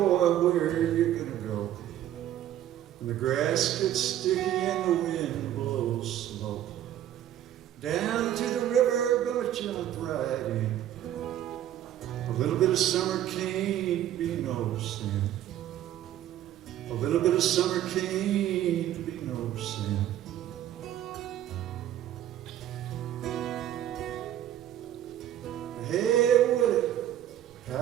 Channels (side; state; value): left; quieter; 11.8 dB